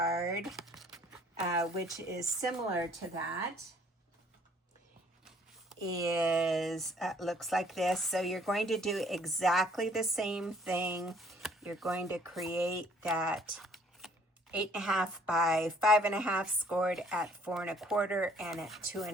which is similar to that, is looks like this. So you're going to do exactly the same thing. You're going to create that 8.5 by 5.5 scored at 4 1/4 and at 2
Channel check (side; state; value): both; normal; correlation 0.59